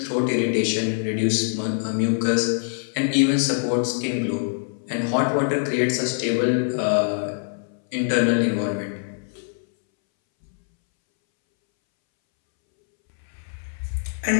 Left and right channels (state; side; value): silent; right; 63 dB below the other